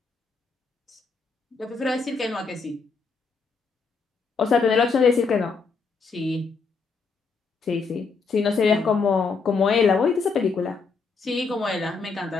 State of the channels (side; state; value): right; quieter; 4.7 dB